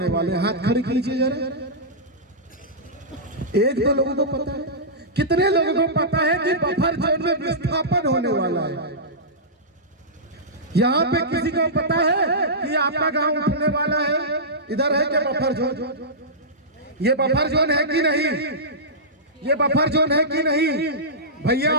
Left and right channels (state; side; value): normal; both; correlation -0.15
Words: वाले? हाथ खड़े कीजिए जरा। एक दो लोगों को पता है? कितने लोगों को पता है कि बफर जोन में विस्थापन होने वाला है? यहाँ पे किसी को पता है कि आपका गांव उठने वाला है? इधर है क्या बफर जोन? ये बफर जोन है कि नहीं? ये बफर जोन है कि नहीं? भैया